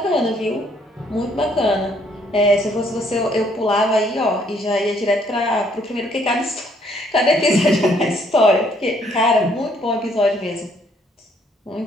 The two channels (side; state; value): both; normal; correlation 0.66